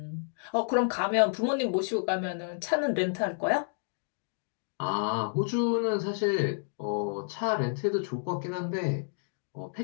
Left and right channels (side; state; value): right; silent; digital silence